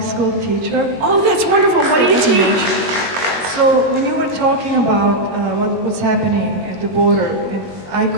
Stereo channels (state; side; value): late; left; 21 ms